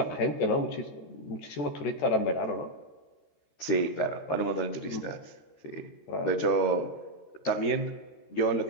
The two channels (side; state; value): right; late; 13 ms